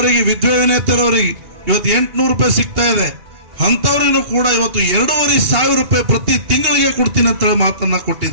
ವಿಧವೆ ವಿನೇತರವರಿಗೆ ಇವತ್ತು 800 ರೂಪಾಯಿ ಸಿಗ್ತಾ ಇದೆ. ಅಂತವರಿಗೂ ಕೂಡ ಇವತ್ತು 2,500 ರೂಪಾಯಿ ಪ್ರತಿ ತಿಂಗಳಿಗೆ ಕೊಡ್ತೀನಿ ಅಂತ ಹೇಳಿ ಮಾತನ್ನ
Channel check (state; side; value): late; left; 2.8 ms